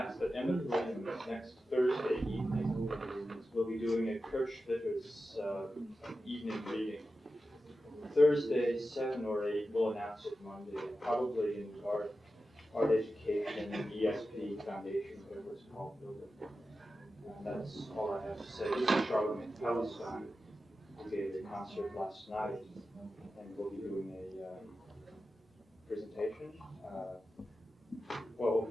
that Emmett Williams next Thursday evening we'll be doing a Kirchvitter's evening reading. Thursday, 7 or 8, we'll announce it Monday, probably in Art Education, ESP Foundation, whatever it's called, building. That's all I have to say. This is Charlemagne Palestine, who gave a concert last night, and we'll be doing a presentation. Well,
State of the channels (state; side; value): normal; both; correlation 0.92